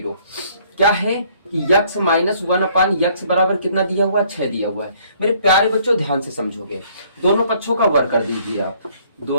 क्या है कि x माइनस 1/x बराबर कितना दिया हुआ है, 6 दिया हुआ है। मेरे प्यारे बच्चों ध्यान से समझोगे, दोनों पक्षों का वर्ग कर दीजिए आप।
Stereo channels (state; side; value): inverted; both; correlation -0.62